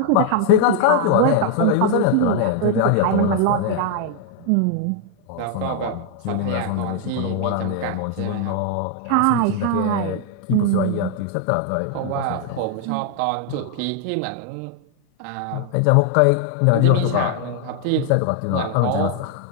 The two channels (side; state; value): both; different; correlation 0.00